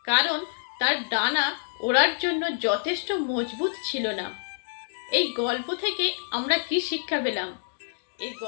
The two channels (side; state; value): right; silent; digital silence